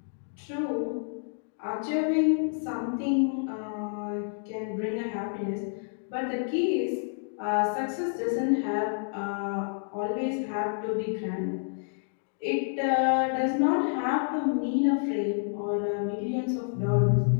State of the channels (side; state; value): right; silent; digital silence